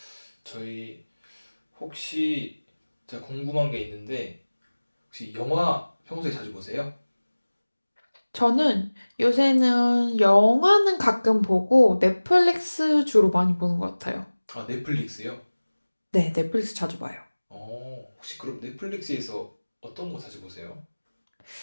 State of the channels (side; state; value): both; inverted; correlation -1.00